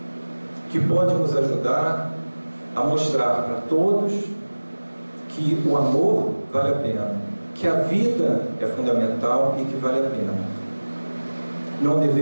que pode nos ajudar a mostrar para todos que o amor vale a pena, que a vida é fundamental e que vale a pena. Não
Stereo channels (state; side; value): inverted; both; correlation -1.00